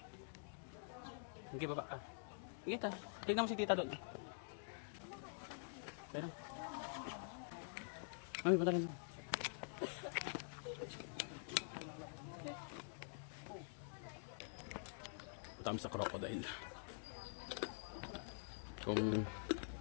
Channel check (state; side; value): silent; right; digital silence